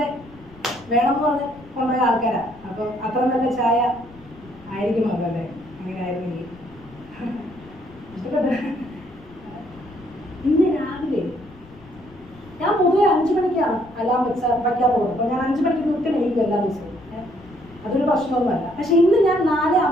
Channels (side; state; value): left; noise; rumble, 23 dB below the sound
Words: വേണമെന്ന് പറഞ്ഞ് കൊണ്ടുപോയ ആൾക്കാരാ. അപ്പം അത്ര നല്ല ചായ ആയിരിക്കും അതല്ലേ? അങ്ങനെ ആയിരുന്നെങ്കിൽ ഇഷ്ടപ്പെട്ടു. ഇന്ന് രാവിലെ ഞാൻ പൊതുവെ 5 മണിക്കാണ് അലാം വയ്ക്കാൻ പോകുന്നത്. അപ്പോൾ ഞാൻ 5 മണിക്ക് കൃത്യം എണീക്കും എല്ലാ ദിവസവും. അതൊരു പ്രശ്നമൊന്നുമല്ല. പക്ഷെ ഇന്ന് ഞാൻ